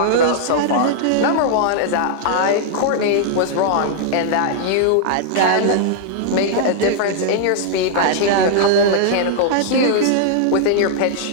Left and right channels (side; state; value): both; different; correlation -0.01